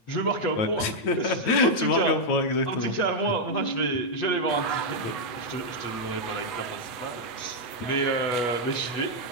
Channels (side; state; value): right; late; 9.0 ms